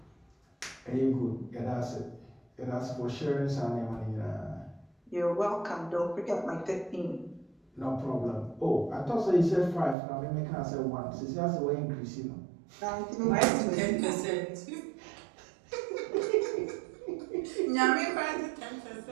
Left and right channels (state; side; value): drops out; left; at 10.0 s